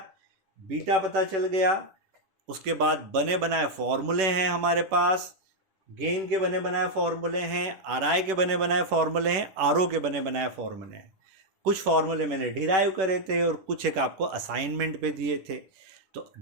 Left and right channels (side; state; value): left; late; 11 ms